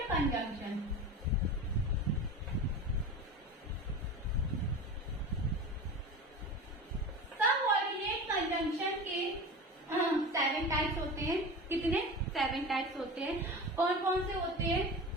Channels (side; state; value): both; normal; correlation 0.31